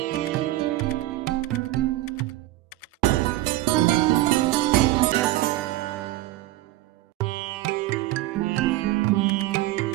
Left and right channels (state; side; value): quieter; left; 16.5 dB